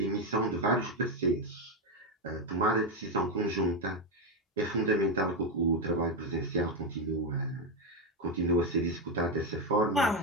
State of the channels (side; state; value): both; normal; correlation 0.08